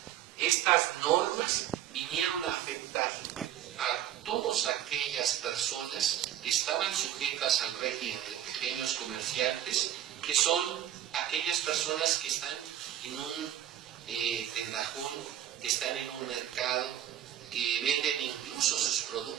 estas normas vinieron a afectar a todas aquellas personas que estaban sujetas al régimen de pequeños comerciantes, que son aquellas personas que están en un tendajón, que están en un mercado, que venden incluso sus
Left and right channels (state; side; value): quieter; left; 11.4 dB